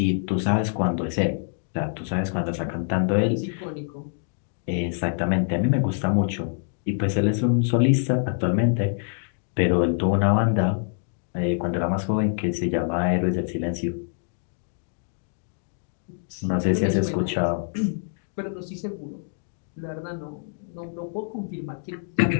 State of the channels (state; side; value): silent; right; digital silence